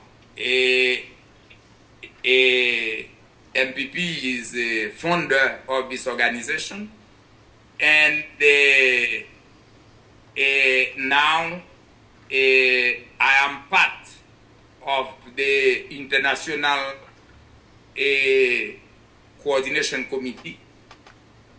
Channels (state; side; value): identical; both; correlation 1.00